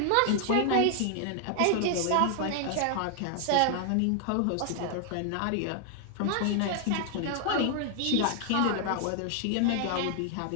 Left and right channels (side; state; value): both; different; correlation 0.00